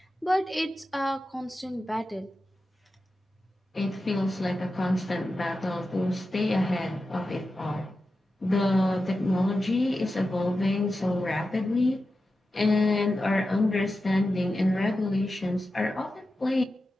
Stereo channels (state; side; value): normal; both; correlation 0.92